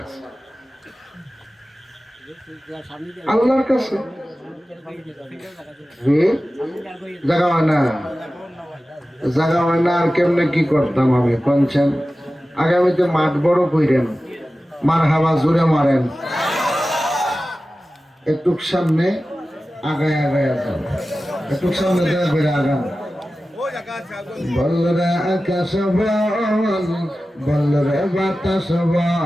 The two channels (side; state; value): both; normal; correlation 0.95